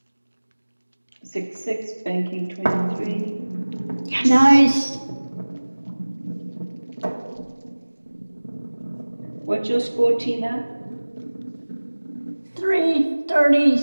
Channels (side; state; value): both; inverted; correlation -1.00